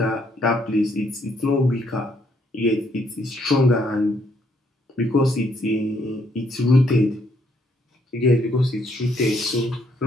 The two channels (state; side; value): normal; both; correlation 0.71